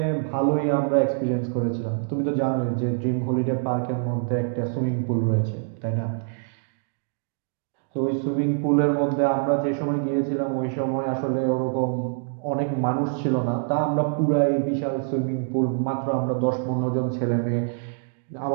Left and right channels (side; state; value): left; silent; digital silence